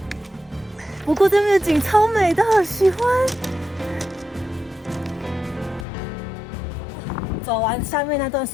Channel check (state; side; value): drops out; right; at 5.9 s